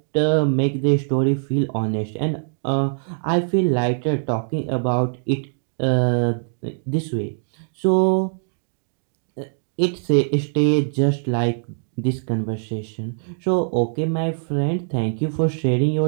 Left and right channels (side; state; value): left; silent; digital silence